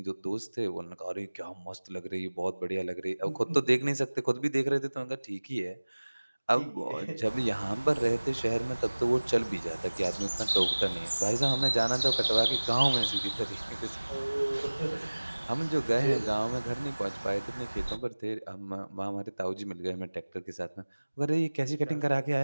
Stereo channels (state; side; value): inverted; both; correlation -1.00